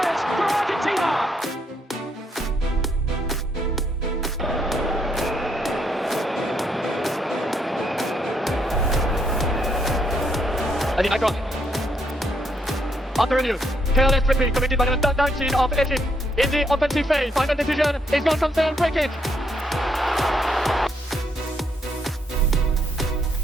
for Argentina. And the icon. Under review. Careless tripping committed by the number 19 of Egypt in the offensive phase. Final decision is non-concerned free kick.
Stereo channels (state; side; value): normal; both; correlation 0.74